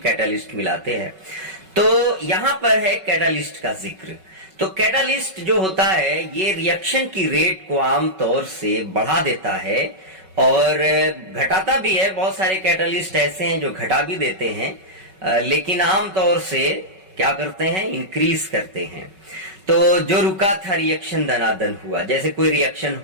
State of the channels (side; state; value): left; late; 5.3 ms